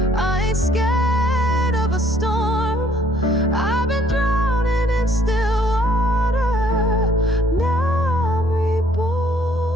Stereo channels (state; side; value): normal; both; correlation 0.62